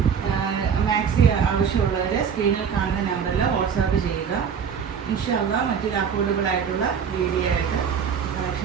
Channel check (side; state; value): left; quieter; 7.0 dB